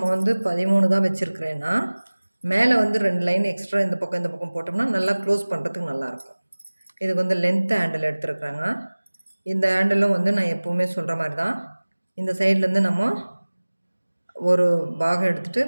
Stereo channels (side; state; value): both; inverted; correlation -1.00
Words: 13 தான் வச்சுருக்கிறேன்னா மேலே 2 லைன் எக்ஸ்ட்ரா இந்த பக்கம் போட்டோம்னா நல்லா க்ளோஸ் பண்ணுறதுக்கு நல்லாயிருக்கும். இதுக்கு லென்த் ஹேண்டில் எடுத்துருக்குறாங்க. இந்த ஹேண்டிலும் நான் எப்போவுமே சொல்கிற மாதிரி தான். இந்த சைட்லேருந்து நம்ம ஒரு பாகம் எடுத்துகிட்டு